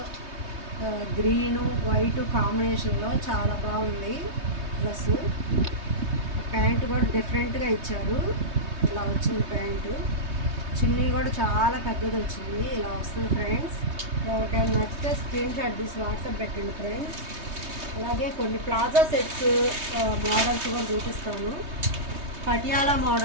గ్రీను వైట్ కాంబినేషన్లో చాలా బాగుంది డ్రెస్. ప్యాంట్ కూడా డిఫరెంట్గా ఇచ్చారు, ఇలా వచ్చింది ప్యాంటు. చున్నీ కూడా చాలా పెద్దది వచ్చింది, ఇలా వస్తుంది ఫ్రెండ్స్. ఎవరికైనా నచ్చితే స్క్రీన్ షాట్ తీసి వాట్సాప్ పెట్టండి ఫ్రెండ్స్. అలాగే కొన్ని ప్లాజా సెట్స్ మోడల్స్ కూడా చూపిస్తాను. పటియాలా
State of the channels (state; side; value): late; left; 3.2 ms